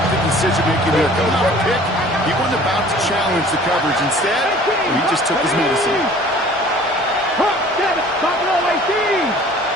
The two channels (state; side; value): normal; both; correlation 0.49